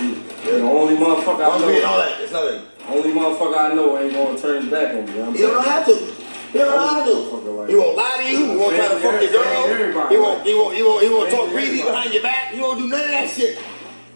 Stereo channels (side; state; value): both; inverted; correlation -1.00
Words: the only motherfucker I know. All that. It's nothing. Only motherfucker I know ain't gonna turn his back on me. You know what I'm You don't have to. You don't know how to. He won't lie to you. He won't try to fuck your girl. He won't talk greedy behind your back. He won't do none of that shit.